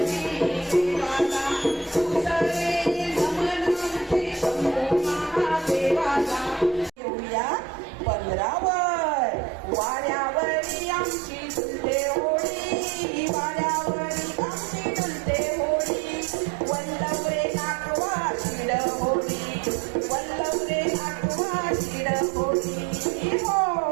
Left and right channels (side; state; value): left; drops out; at 6.9 s